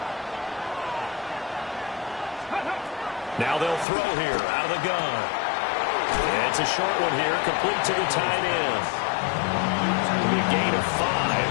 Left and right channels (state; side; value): drops out; right; at 3.9 s